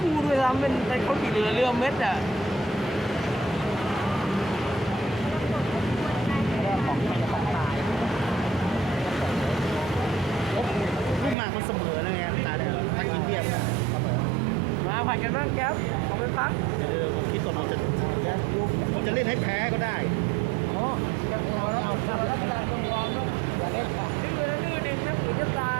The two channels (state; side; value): drops out; left; at 11.4 s